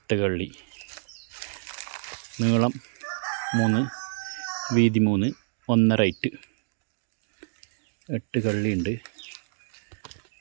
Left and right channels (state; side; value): silent; left; digital silence